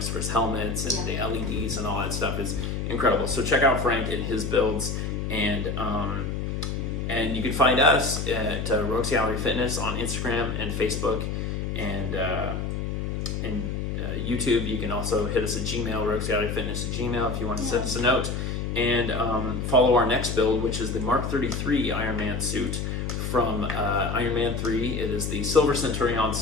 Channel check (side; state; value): left; noise; hum, 2 dB below the sound